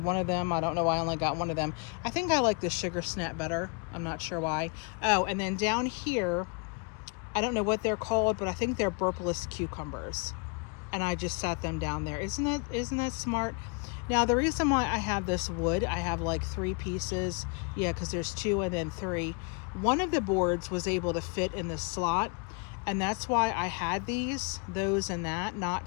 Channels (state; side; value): quieter; right; 34.5 dB